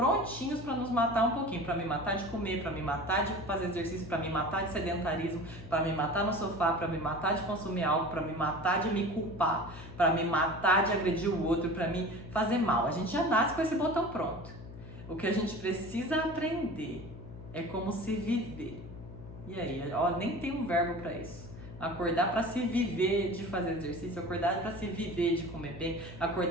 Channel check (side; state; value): left; noise; hum, 14 dB below the sound